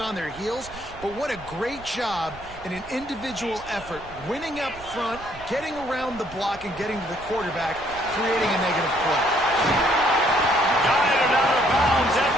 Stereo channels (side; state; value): right; noise; rumble, 18 dB below the sound